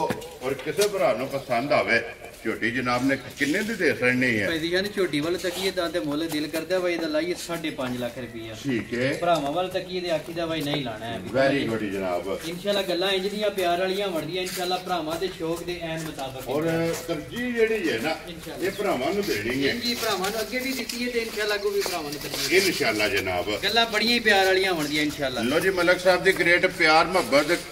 ਔਰ ਕਿਸੇ ਭਰਾ ਨੂੰ ਪਸੰਦ ਆਵੇ ਝੋਟੀ ਜਨਾਬ ਨੇ ਕਿੰਨੇ ਦੀ ਦੇ ਸਕਣੀ ਹੈ? ਭਾਈ ਯਾਨੀ ਝੋਟੀ ਵੱਲ ਤੱਕੀਏ ਤਾਂ ਤੇ ਮੁੱਲ ਦਿਲ ਕਰਦਾ ਭਾਈ ਇਹਦਾ ਲਾਈਏ 5.5 ਲੱਖ ਰੁਪਈਆ। ਠੀਕ ਹੈ। ਭਰਾਵਾਂ ਵੱਲ ਤੱਕੀਏ ਤੇ ਆਖੀ ਦਾ ਭਾਈ ਨਹੀਂ ਲਾਣਾ ਹੈ। ਵੈਰੀ ਗੁੱਡ ਜਨਾਬ। ਇਨਸ਼ਾਅੱਲਾ ਗੱਲਾਂ ਇੰਜ ਦੀਆਂ ਪਿਆਰ ਵਾਲੀਆਂ ਵੜਦੀਆਂ ਇਨਸ਼ਾਅੱਲਾ ਭਰਾਵਾਂ ਦੇ ਸ਼ੌਕ ਦੇ ਐਨ ਮੁਤਾਬਕ। ਔਰ ਤਰਜੀਹ ਜਿਹੜੀ ਹੈ ਨਾ ਇਹ ਭਰਾਵਾਂ ਨੂੰ ਦੇਣੀ ਹੈ। ਜੀ ਭਰਾਵਾਂ ਨੂੰ ਅੱਗੇ ਵੀ ਦਿੱਤੀ ਹੈ ਤੇ ਇਨਸ਼ਾਅੱਲਾ ਅੱਗੋਂ ਵੀ ਭਰਾਵਾਂ ਨੂੰ ਦੇਣੀ ਹੈ ਇਨਸ਼ਾਅੱਲਾ ਜਨਾਬ। ਗੱਲਾਂ ਬੜੀਆਂ ਹੀ ਪਿਆਰ ਵਾਲੀਆਂ ਵੜਦੀਆਂ ਇਨਸ਼ਾਅੱਲਾ। ਲੋ ਜੀ ਮਲਕ ਸਾਹਿਬ ਦੀ ਗ੍ਰੇਟ ਪਿਆਰ ਮੁਹੱਬਤ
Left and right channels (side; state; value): both; identical; correlation 1.00